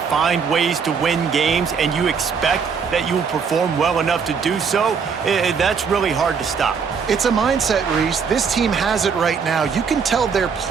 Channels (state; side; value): quieter; left; 6.1 dB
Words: ways to win games and you expect that you will perform well enough to do so, that's really hard to stop. It's a mindset, Reese. This team has it right now. You can tell their